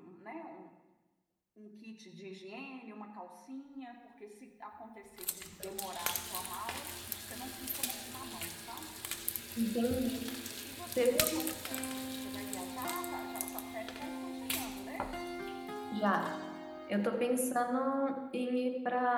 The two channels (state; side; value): identical; both; correlation 1.00